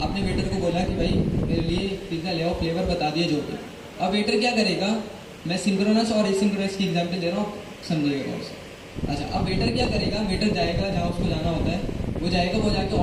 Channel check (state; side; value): identical; both; correlation 1.00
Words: आपने वेटर को बोला कि भाई मेरे लिए पिज़्ज़ा ले आओ, फ्लेवर बता दिए जो भी। अब वेटर क्या करेगा? मैं सिंक्रोनस और एसिंक्रोनस की एग्जांपल दे रहा हूँ, समझिएगा उसे। अच्छा, अब वेटर क्या करेगा, वेटर जाएगा जहाँ उसको जाना होता है, वो जाएगा, वो जाके